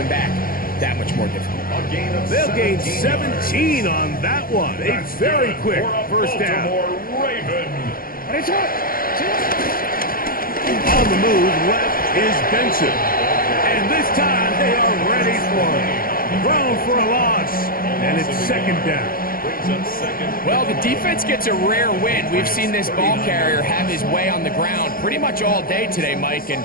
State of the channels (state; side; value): late; right; 0.42 ms